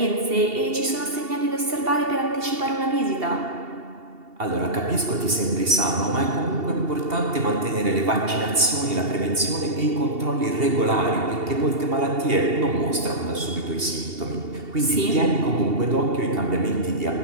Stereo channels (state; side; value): late; left; 2.7 ms